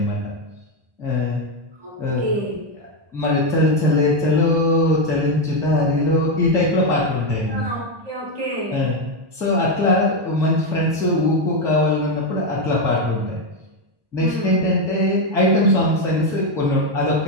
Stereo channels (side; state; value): left; late; 1.2 ms